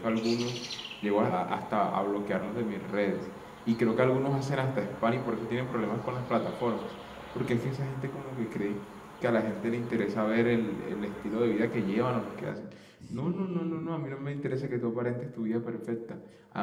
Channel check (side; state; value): both; identical; correlation 1.00